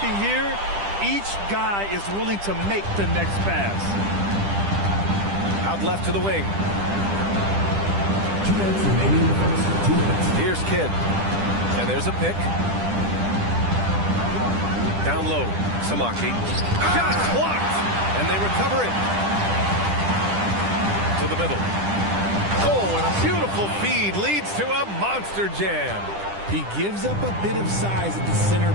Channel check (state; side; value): late; left; 10 ms